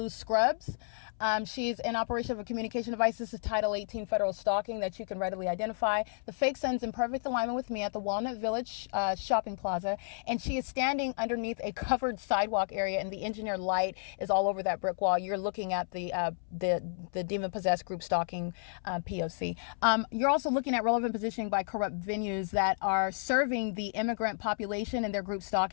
scrubs. She's in operation of a communication device. This is Title 18 federal stalking that you can readily identify. The fake sun's in perfect alignment with me at the Walnut Village shopping plaza, and she is standing underneath a covered sidewalk area, and the engineered light is all over that brick wall. You're looking at the demon-possessed group stalking P.O.C. You're also looking at relevant positioning by corrupt venues that are serving the immigrant population and their group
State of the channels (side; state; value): right; silent; 57 dB below the other